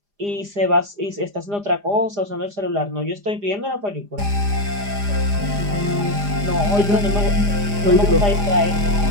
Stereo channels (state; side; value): late; left; 4.9 ms